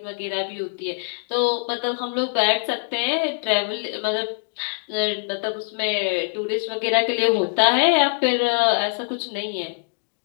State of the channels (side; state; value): right; silent; digital silence